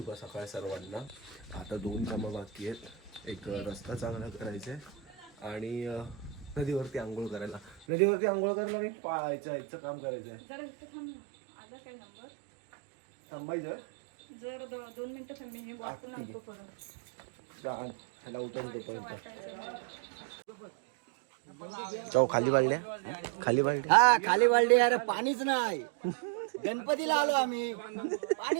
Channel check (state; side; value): drops out; left; at 7.9 s